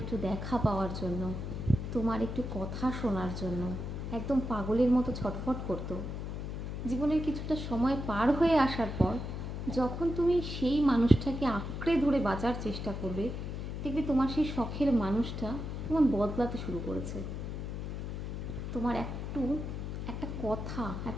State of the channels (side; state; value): left; noise; hum, 5 dB below the sound